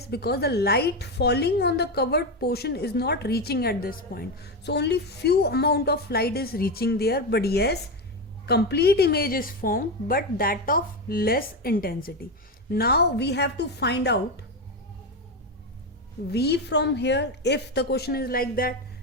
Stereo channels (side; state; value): both; normal; correlation 0.13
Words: Because the light falling on the covered portion is not reaching at this point. So only few amount of light is reaching there. But yes, complete image is formed, but that of less intensity. Now we have to find out V from here. If the question is like that,